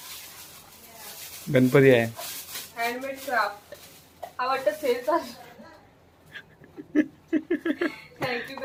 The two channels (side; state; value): both; identical; correlation 1.00